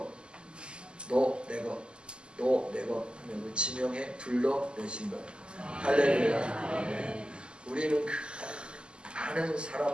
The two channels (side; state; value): left; late; 0.049 ms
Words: 너 내 것, 너 내 것 하면 지명해 불러내신 거예요. 할렐루야. 우리는 그 많은